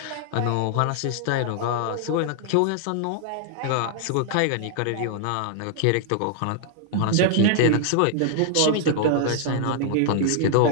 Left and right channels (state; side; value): different; both; correlation -0.01